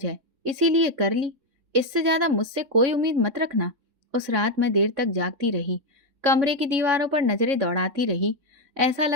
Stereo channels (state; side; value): late; left; 3.6 ms